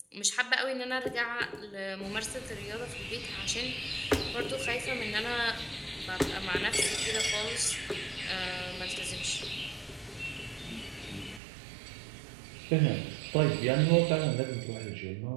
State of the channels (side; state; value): left; drops out; at 11.4 s